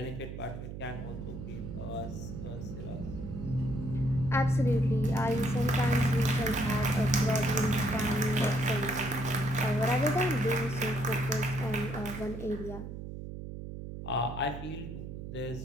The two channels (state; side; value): noise; right; hum, 9 dB below the sound